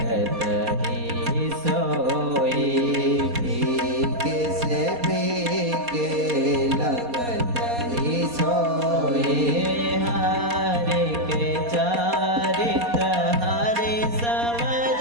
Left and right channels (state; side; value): late; left; 4.2 ms